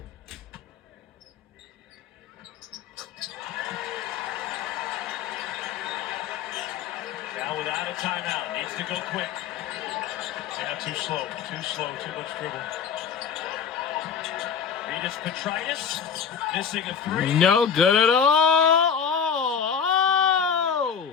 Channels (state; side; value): quieter; right; 7.0 dB